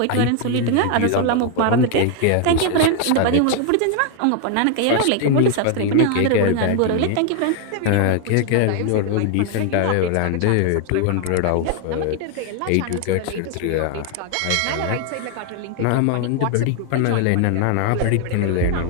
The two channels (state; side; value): different; both; correlation 0.00